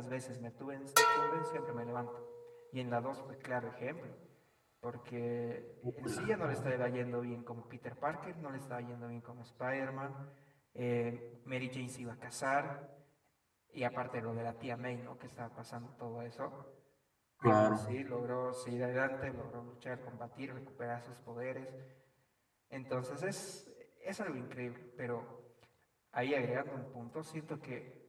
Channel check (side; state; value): both; identical; correlation 1.00